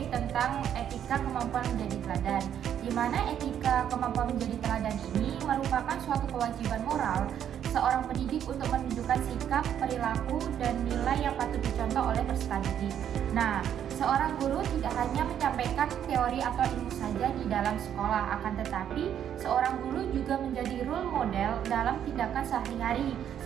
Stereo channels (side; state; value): left; quieter; 9.6 dB